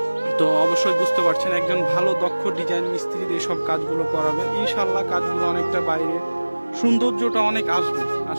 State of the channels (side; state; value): both; inverted; correlation -1.00